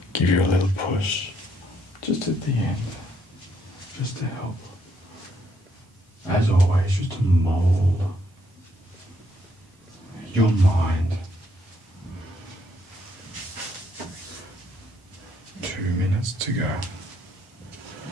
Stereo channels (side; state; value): both; normal; correlation 0.72